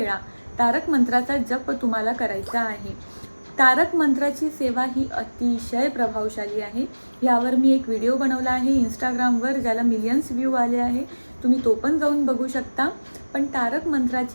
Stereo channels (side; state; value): both; inverted; correlation -1.00